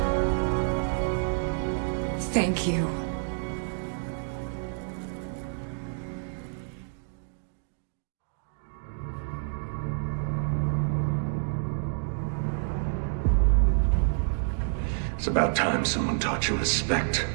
Thank you. It's about time someone taught you respect,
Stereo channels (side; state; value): left; silent; digital silence